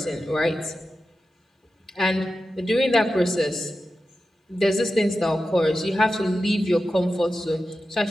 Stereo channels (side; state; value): both; normal; correlation 0.92